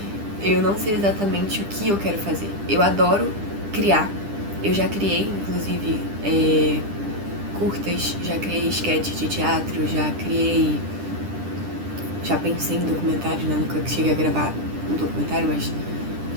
Eu não sei exatamente o que eu quero fazer. Eu adoro criar. Eu já criei, inclusive, curtas, já criei sketch de teatro, já pensei em documentário, né? Nunca cheguei a gravar um documentário, mas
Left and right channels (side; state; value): left; late; 10 ms